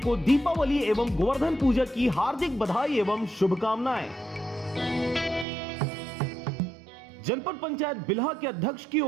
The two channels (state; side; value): drops out; left; at 5.5 s